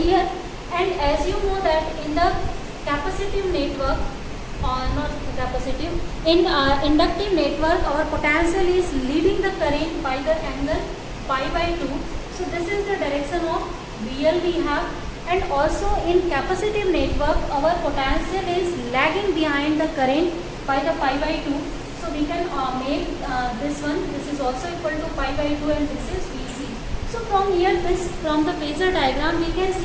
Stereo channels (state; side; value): identical; both; correlation 1.00